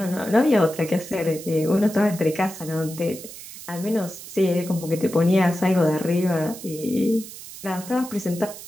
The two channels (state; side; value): noise; right; hiss, 14 dB below the sound